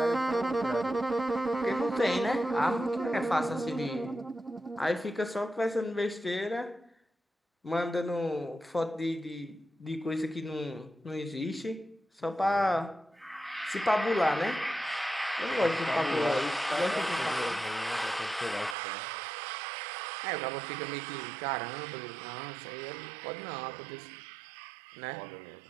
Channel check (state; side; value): drops out; left; at 18.8 s